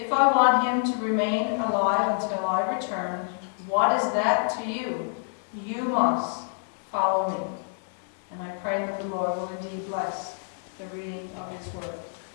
I want him to remain alive until I return, what is that to you? You must follow me. And I pray that the Lord will indeed bless the reading of his word.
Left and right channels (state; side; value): silent; right; digital silence